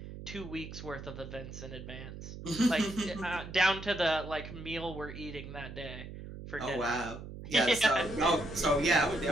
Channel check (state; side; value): noise; right; hum, 11 dB below the sound